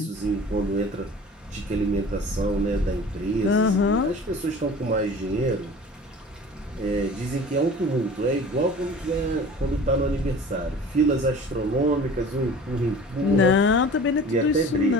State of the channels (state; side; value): normal; both; correlation 0.42